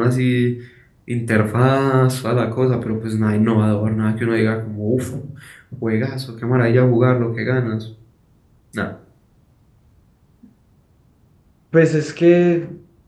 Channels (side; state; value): both; identical; correlation 1.00